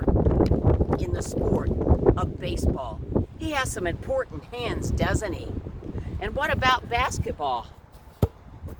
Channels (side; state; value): both; identical; correlation 1.00